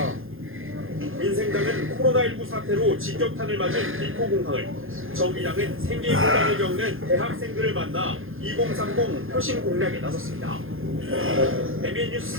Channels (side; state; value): left; late; 0.60 ms